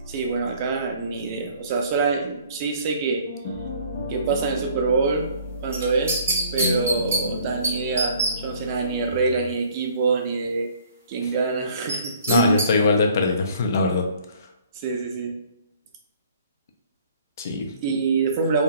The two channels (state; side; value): inverted; both; correlation -0.56